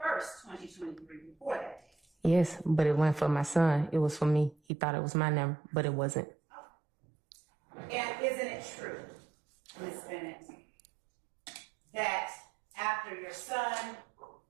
2023, before that day? Yes, but it wasn't for my son. It was for me. He thought it was my number, but it wasn't. And isn't it true, Ms. Bennett, that after your son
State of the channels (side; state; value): left; drops out; at 4.5 s